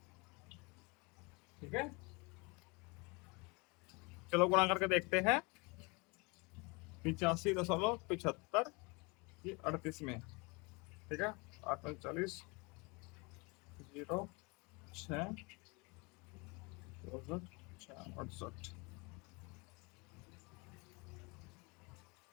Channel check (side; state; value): right; quieter; 28.3 dB